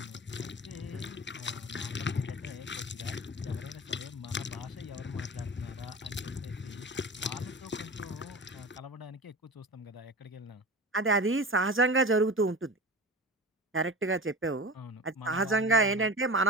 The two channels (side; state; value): both; normal; correlation 0.32